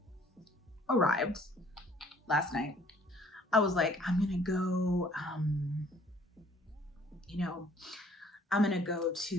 arrived last night, I was like, I'm gonna go, I'm gonna go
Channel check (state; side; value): normal; both; correlation 0.58